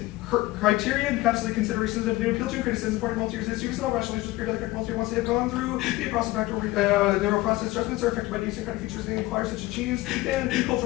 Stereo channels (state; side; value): quieter; right; 18.9 dB